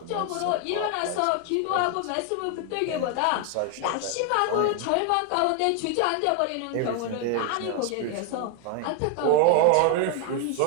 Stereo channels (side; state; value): both; different; correlation 0.00